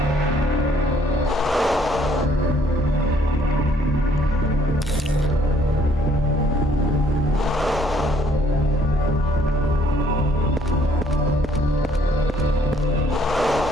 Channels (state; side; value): normal; both; correlation 0.64